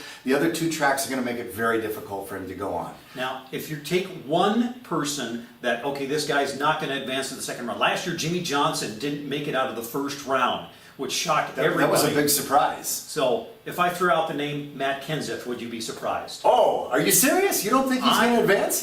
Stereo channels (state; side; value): identical; both; correlation 1.00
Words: The other two tracks are going to make it very difficult for him to go on. Now, if you take one person that, okay, this guy's not going to advance to the second round. Last year, Jimmy Johnson didn't make it out of the first round, which shocked everybody. That was a big surprise. So, if I threw out the name Matt Kenseth, would you be surprised? Oh, are you serious? You don't think he's going to